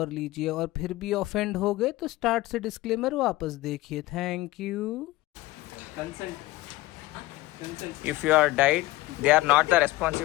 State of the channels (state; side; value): quieter; right; 18.5 dB